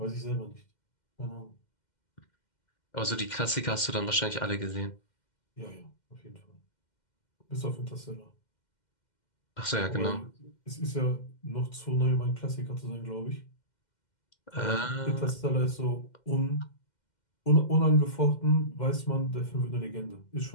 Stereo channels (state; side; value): late; right; 2.1 ms